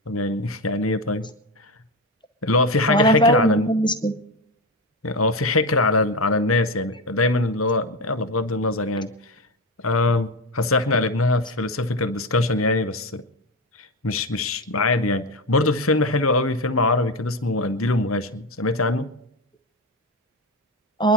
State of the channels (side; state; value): both; normal; correlation 0.16